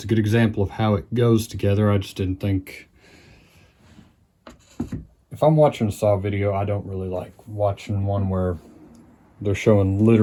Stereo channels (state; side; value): identical; both; correlation 1.00